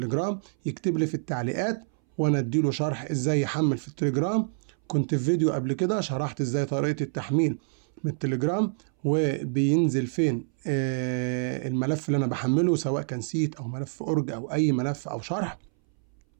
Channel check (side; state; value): left; silent; 60 dB below the other